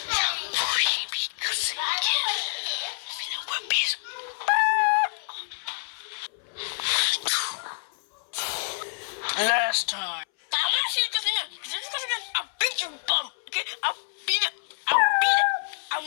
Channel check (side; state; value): right; silent; 60 dB below the other